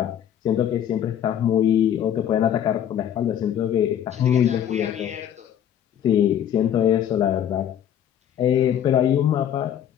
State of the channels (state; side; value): quieter; right; 9.8 dB